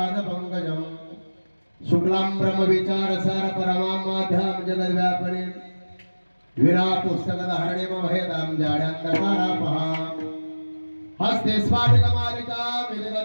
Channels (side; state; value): both; inverted; correlation -1.00